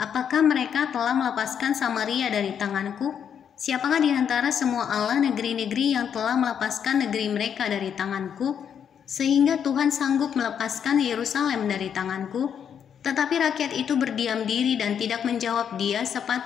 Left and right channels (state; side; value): quieter; right; 8.1 dB